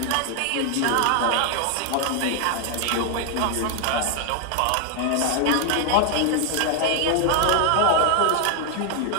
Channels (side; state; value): both; different; correlation 0.00